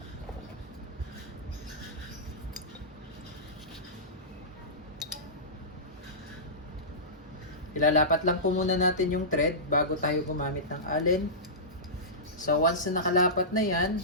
Ilalapat lang po muna natin yung thread bago tayo gumamit ng Allen. So once na nakalapat na yan,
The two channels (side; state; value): both; normal; correlation -0.18